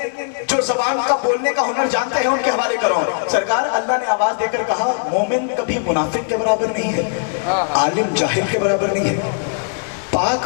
جو زبان کا بولنے کا ہنر جانتے ہیں ان کے حوالے کراؤں. سرکار اللہ نے آواز دے کر کہا مومن کبھی منافق کے برابر نہیں ہے, عالم جاہل کے برابر نہیں ہے, پاک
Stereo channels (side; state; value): right; silent; 61 dB below the other